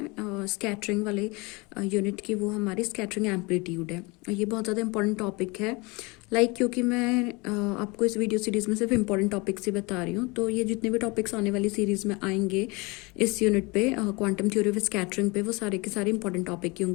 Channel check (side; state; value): right; quieter; 26.6 dB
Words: स्कैटरिंग वाले यूनिट की, वो हमारी स्कैटरिंग एम्पलीट्यूड है। ये बहुत ज़्यादा इंपॉर्टेंट टॉपिक है। क्योंकि मैं आपको इस वीडियो सीरीज़ में सिर्फ इंपॉर्टेंट टॉपिक्स ही बता रही हूँ, तो ये जितने भी टॉपिक्स आने वाली सीरीज़ में आएंगे इस यूनिट पे क्वांटम थ्योरी ऑफ स्कैटरिंग पे, वो सारे के सारे इंपॉर्टेंट टॉपिक ही